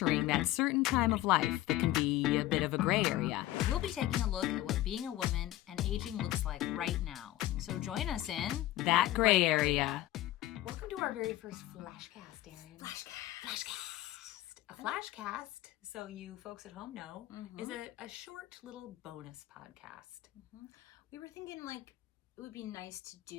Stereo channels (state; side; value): quieter; right; 15.3 dB